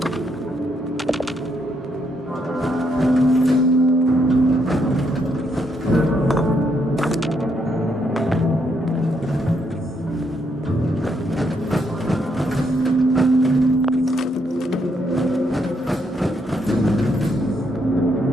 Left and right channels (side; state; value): both; normal; correlation 0.75